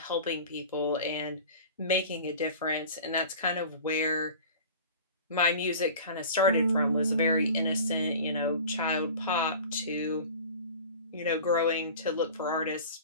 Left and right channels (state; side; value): inverted; both; correlation -0.40